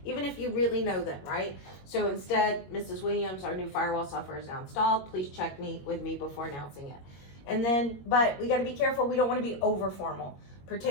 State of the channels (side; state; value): right; late; 21 ms